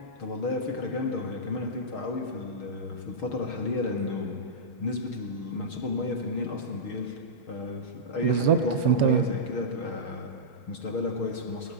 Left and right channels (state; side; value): late; right; 6.4 ms